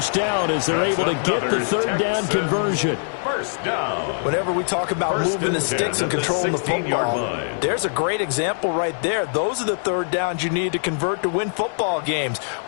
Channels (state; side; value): silent; right; digital silence